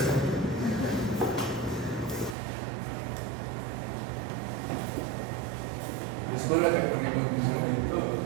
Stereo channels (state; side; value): drops out; left; at 2.4 s